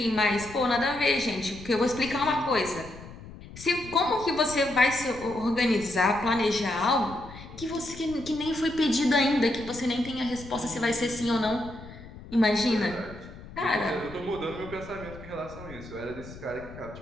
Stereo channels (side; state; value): left; noise; rumble, 15 dB below the sound